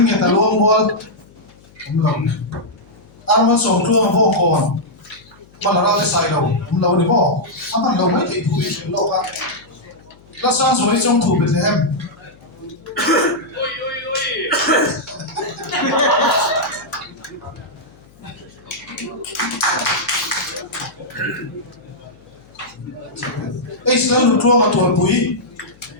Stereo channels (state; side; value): noise; left; hum, 27 dB below the sound